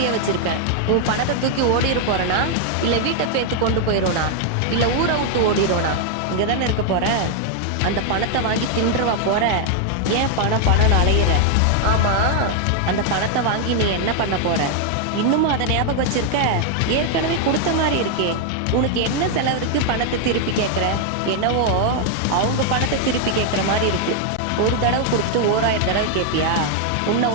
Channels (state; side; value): different; both; correlation 0.00